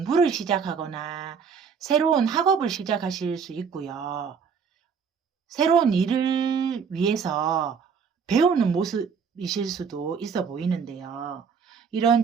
시작하거나 새로운 학업을 시작하실 수 있고요. 새로운 일을 위해서 배우는 모습이실 수도 있어 보이는데요. 이런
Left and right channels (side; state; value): left; quieter; 6.2 dB